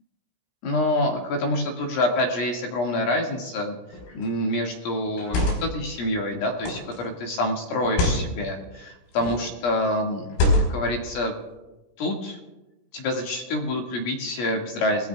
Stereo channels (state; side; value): late; right; 17 ms